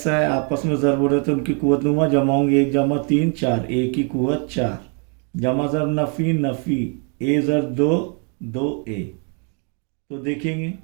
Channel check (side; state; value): left; quieter; 39.0 dB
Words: है, आपस में ज़र्ब हो रहे हैं, तो उनकी कुवत लूँगा, जमा होंगे 1 जमा 3 4, a की कुवत 4, जमा ज़र्ब नफ़ी नफ़ी, a ज़र्ब 2 2a। तो देखेंगे